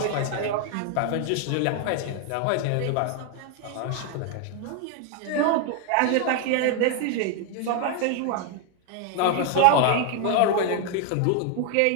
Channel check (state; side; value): different; both; correlation 0.01